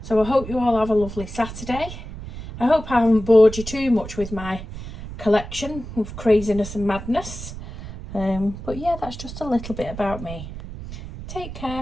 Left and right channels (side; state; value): right; noise; rumble, 11 dB below the sound